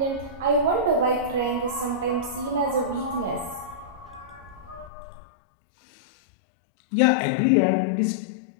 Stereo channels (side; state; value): right; drops out; at 4.9 s